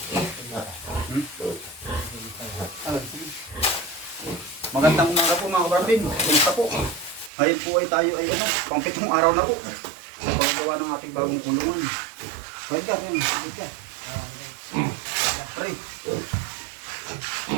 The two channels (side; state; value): left; drops out; at 7.3 s